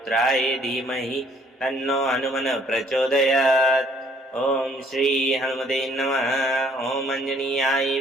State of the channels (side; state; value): both; normal; correlation 0.62